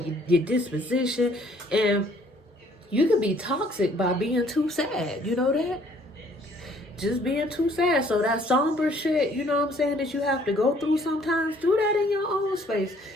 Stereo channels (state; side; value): normal; both; correlation 0.61